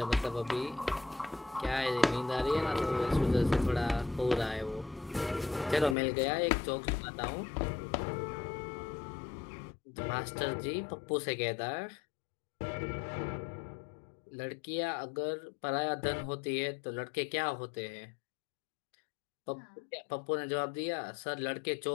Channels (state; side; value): drops out; right; at 6.0 s